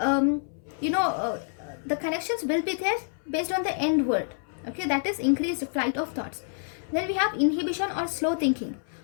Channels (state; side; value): silent; right; 60 dB below the other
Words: connections will be there based on the end word, okay, that is increased flight of thoughts. Then we have inhibition or slow thinking.